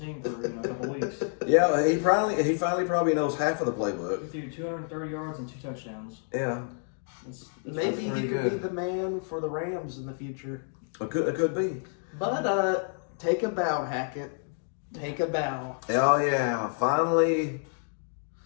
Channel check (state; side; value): silent; right; 59 dB below the other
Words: team for a couple weeks. Yeah, he finally probably knows half of the playbook. He threw 230 yards and 2 touchdowns. Yeah. That's maybe he could be the man for the Rams in the future. It could be. But take a bow, Hackett. Take a bow. Oh yeah, finally,